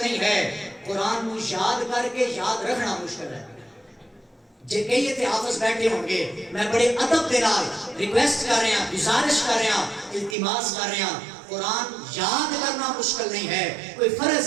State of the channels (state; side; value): drops out; left; at 10.4 s